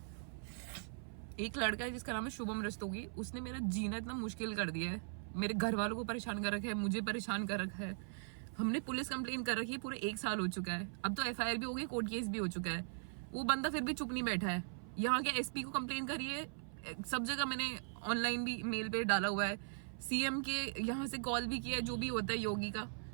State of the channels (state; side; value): silent; left; 51 dB below the other